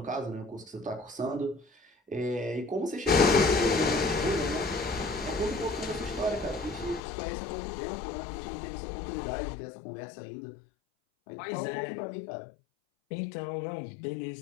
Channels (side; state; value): right; drops out; at 7.0 s